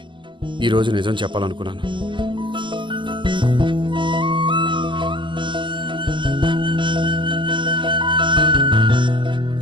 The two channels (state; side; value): late; left; 0.24 ms